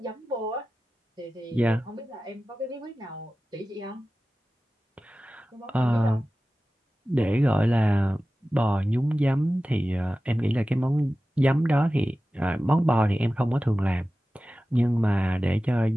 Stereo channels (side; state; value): both; normal; correlation 0.95